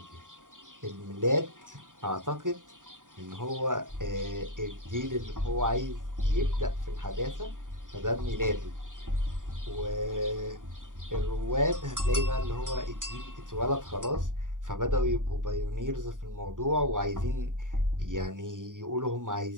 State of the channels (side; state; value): left; late; 0.88 ms